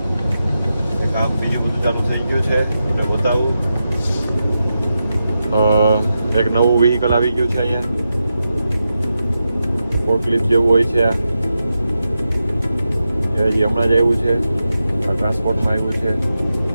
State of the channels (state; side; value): inverted; both; correlation -0.89